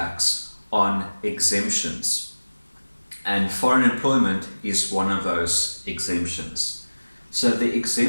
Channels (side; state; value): both; inverted; correlation -1.00